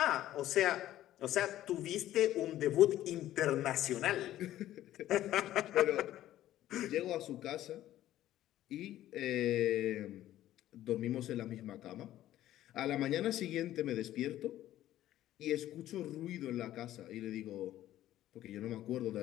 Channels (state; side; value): quieter; right; 13.5 dB